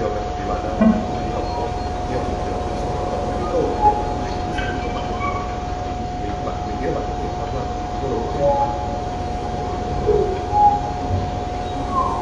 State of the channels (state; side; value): identical; both; correlation 1.00